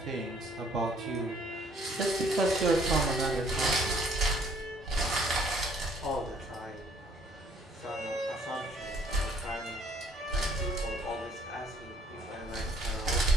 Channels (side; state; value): both; normal; correlation 0.62